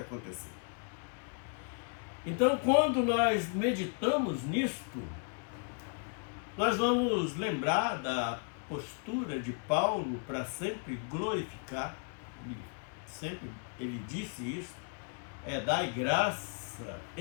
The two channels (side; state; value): right; quieter; 38.6 dB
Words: Então, quando nós meditamos nisto, nós vamos lembrar da postura de Paulo para sempre glorificar, ele disse isso, dai graça